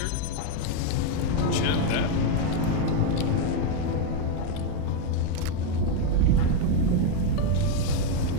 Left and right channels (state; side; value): different; both; correlation 0.02